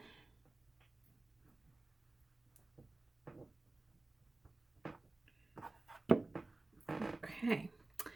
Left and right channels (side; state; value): left; quieter; 3.0 dB